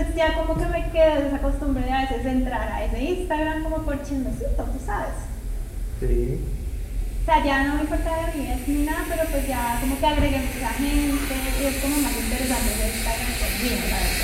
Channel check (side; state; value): both; identical; correlation 1.00